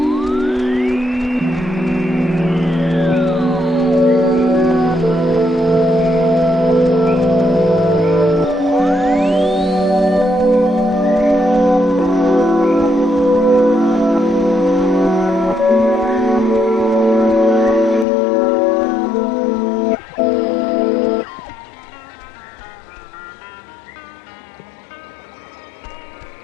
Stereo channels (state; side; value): drops out; right; at 18.1 s